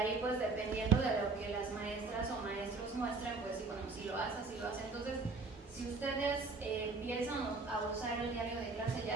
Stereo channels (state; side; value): quieter; left; 3.9 dB